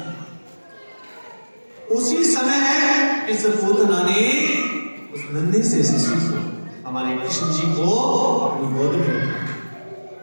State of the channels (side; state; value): both; inverted; correlation -1.00